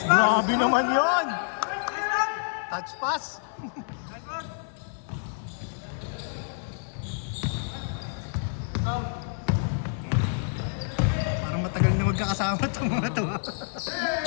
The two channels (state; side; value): silent; right; digital silence